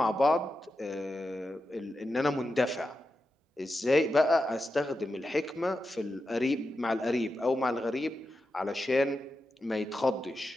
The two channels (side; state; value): both; normal; correlation 0.89